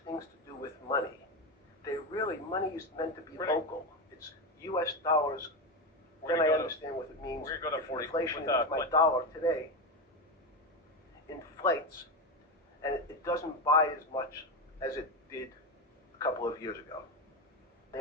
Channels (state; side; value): normal; both; correlation 0.15